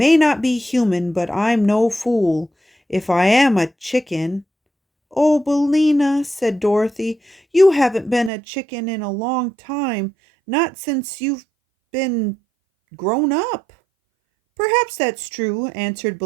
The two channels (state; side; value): drops out; left; at 8.3 s